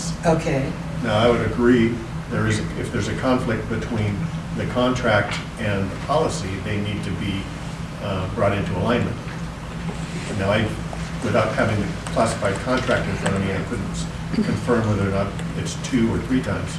Okay, Now, I would agree, if there's a conflict between the contract and policy, they need to be brought into alignment. Now, without having the classified contract in front of me, I couldn't confirm whether or not it's 2 or 3 times.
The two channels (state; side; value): identical; both; correlation 1.00